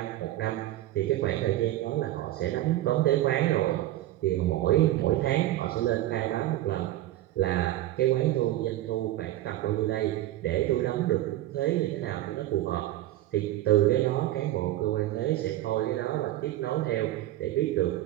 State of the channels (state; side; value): quieter; left; 14.8 dB